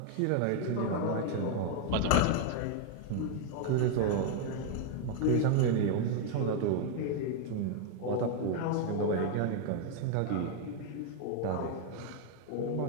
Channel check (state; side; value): different; both; correlation 0.00